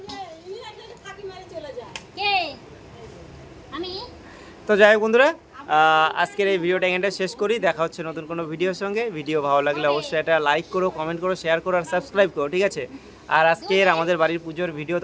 তো যাই হোক বন্ধুরা, আজকের এই ভিডিওটা এখানটা শেষ করি। দেখা হচ্ছে নতুন কোনো ভিডিওর সঙ্গে। ভিডিও ভালো লাগলে অবশ্যই এটা লাইক করো, কমেন্ট করো, শেয়ার করো আর সাবস্ক্রাইব করো, ঠিক আছে। আর আজকের আমাদের বাড়ির পুজোর ভিডিও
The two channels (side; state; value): both; identical; correlation 1.00